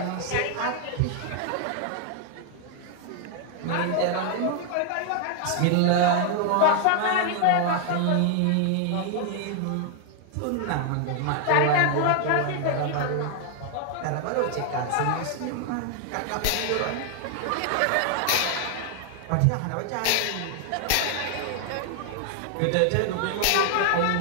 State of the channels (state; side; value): different; both; correlation 0.00